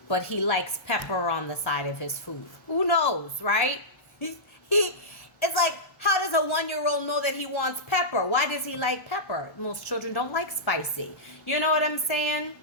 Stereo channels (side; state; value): right; late; 1.1 ms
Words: but he likes pepper on the side of his food. Who knows, right? It's like, how does a 1-year-old know that he wants pepper? Why does he like pepper? Most children don't like spicy. You know what I'm saying?